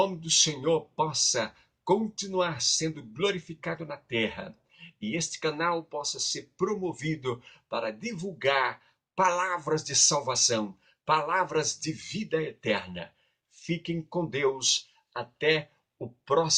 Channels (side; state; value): both; identical; correlation 1.00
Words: do Senhor possa continuar sendo glorificado na terra e este canal possa ser promovido para divulgar palavras de salvação, palavras de vida eterna. Fiquem com Deus até a